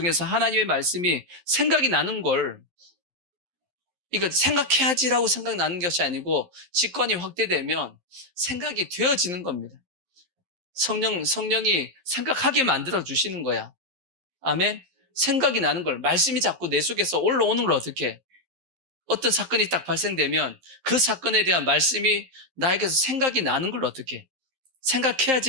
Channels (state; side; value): late; left; 11 ms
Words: 하나님의 말씀이 생각이 나는 걸, 이거 생각해야지라고 생각나는 것이 아니고 직관이 확대되면 생각이 되어지는 겁니다. 성령이 생각하게 만들어 주시는 거야. 아멘. 생각이 나는 걸, 말씀이 자꾸 내 속에서 올라오는 걸 어떻게 해? 어떤 사건이 딱 발생되면 그 사건에 대한 말씀이 나에게서 생각이 나는 걸 어떻게 해?